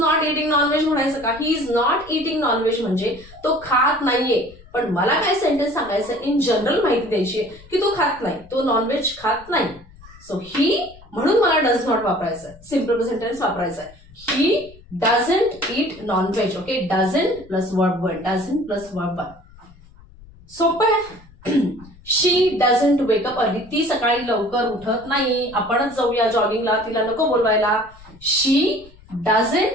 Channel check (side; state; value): left; noise; rumble, 23 dB below the sound